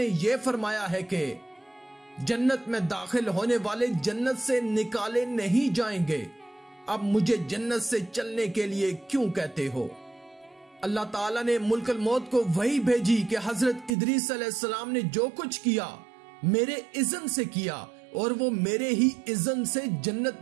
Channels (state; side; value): drops out; left; at 14.0 s